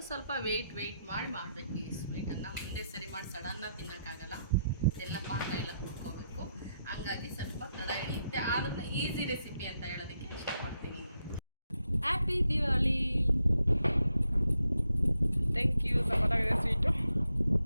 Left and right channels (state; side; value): inverted; both; correlation -0.82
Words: ಸ್ವಲ್ಪ ವೆಯ್ಟ್ ಮಾಡಿ ಮಾಡಬೇಕು ಈ ಸ್ವೀಟನ್ನು. ಒಂದೇ ಸರಿ ಮಾಡಿ ಸಡನ್ನಾಗಿ ತಿನ್ನೋಕ್ಕಾಗಲ್ಲ, ಎಲ್ಲ ಪಾಕ ಎಲ್ಲ ಕುಡ್ಕೋಬೇಕು. ಹಂಗಾಗಿ ಸ್ವಲ್ಪ ತಡ ಹಿಡಿಯುತ್ತೆ, ಆದ್ರೂ ಈಸಿ ರೆಸಿಪಿ ಅಂತ ಹೇಳೋದಕ್ಕೆ ಇಷ್ಟಪಡ್ತೀನಿ. ಹ್ಯಾಪಿ ದಿವಾಲಿ. Thank you. ಸಪತ್ತಾಗಿದೆ ಸ್ವೀಟು.